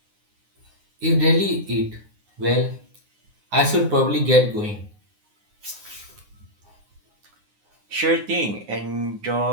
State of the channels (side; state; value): left; late; 9.7 ms